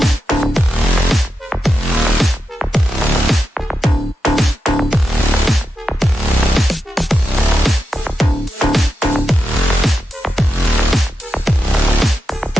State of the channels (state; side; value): normal; both; correlation 0.88